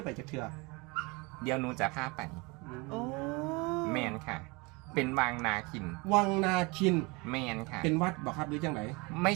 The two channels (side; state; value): left; quieter; 27.0 dB